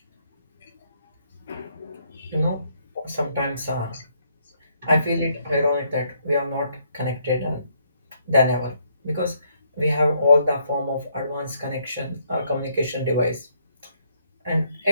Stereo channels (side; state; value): both; inverted; correlation -0.70